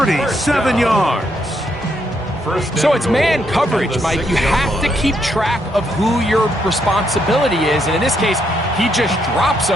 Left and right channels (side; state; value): both; normal; correlation 0.76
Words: yards. So it's man coverage, Mike. You have to keep track of who your responsibility is. And in this case, he just drops